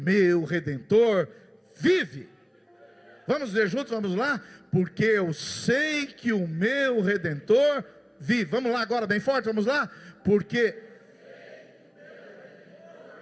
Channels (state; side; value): identical; both; correlation 1.00